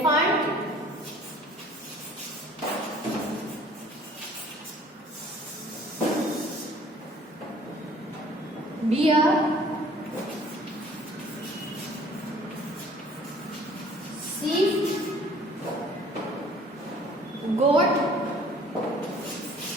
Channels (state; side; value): normal; both; correlation 0.53